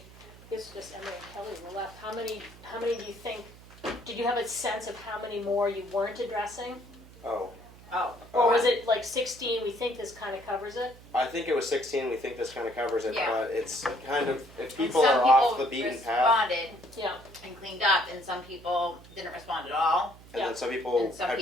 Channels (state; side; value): noise; right; hum, 21 dB below the sound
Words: this is just Emily and Kelly were left, how many do you think, did you have a sense of how many more you weren't addressing? Oh, Oh, Or was it like 16, we think this kind of covers it? I think it was 16. We think this kind of covers it, Yeah. but it's kind of if and people some are off people the beaten path, responded Yeah, and cleaned up, and some people didn't respond at all. and Yeah. then some people, And some were